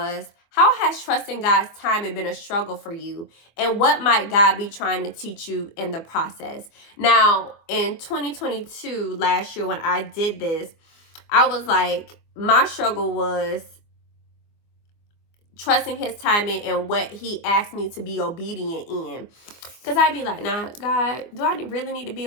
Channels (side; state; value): right; late; 24 ms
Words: how has trusting God's timing been a struggle for you? And what might God be trying to teach you in the process? Now, in 2022, last year when I did this, I was like, my struggle was trusting his timing and what he asked me to be obedient in. Because I'd be like, nah, God, do I really need to